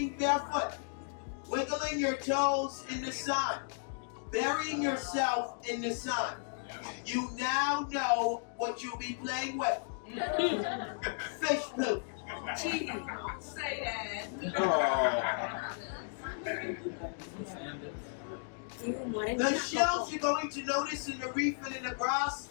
barefoot, wiggling your toes in the sun, burying yourself in the sun. You now know what you'll be playing with. Fish poop. Gee, say that. The shells you're going to notice in the reef and in the grass,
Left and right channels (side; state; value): right; silent; digital silence